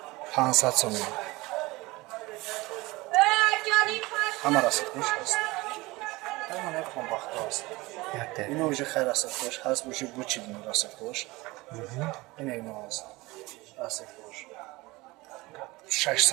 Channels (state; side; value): quieter; left; 21.7 dB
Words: 500 сомон. ҳама расетош ҳаст. ҳама японбахто аст. ино уже хай расетош ҳаст, уже бучидин расетош. ино аст. расетош